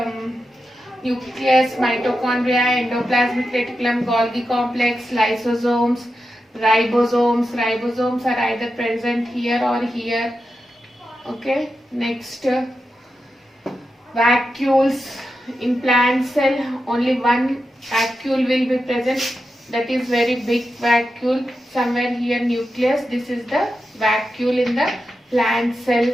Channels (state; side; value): normal; both; correlation 0.89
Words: nucleus, mitochondria, endoplasmic reticulum, Golgi complex, lysosomes, ribosomes. Ribosomes are either present here or here. Okay. Next, vacuoles. In plant cell, only one vacuole will be present. That is very big vacuole. Somewhere here nucleus. This is the vacuole in the plant cell.